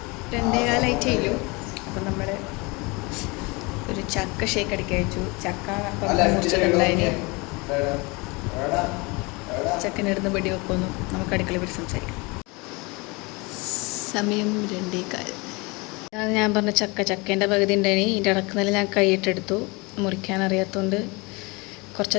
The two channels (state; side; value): quieter; right; 26.6 dB